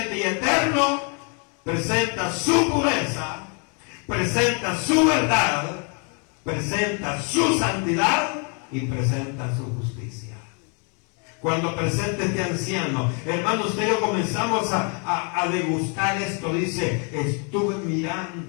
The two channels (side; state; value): right; quieter; 37.4 dB